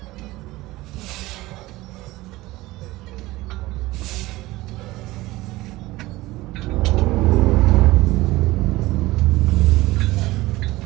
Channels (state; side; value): quieter; left; 18.9 dB